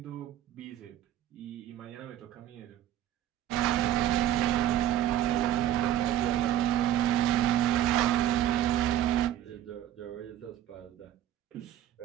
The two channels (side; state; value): left; quieter; 12.0 dB